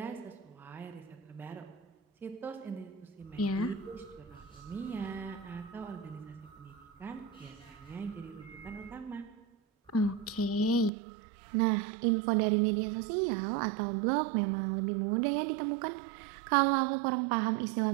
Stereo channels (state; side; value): drops out; left; at 10.9 s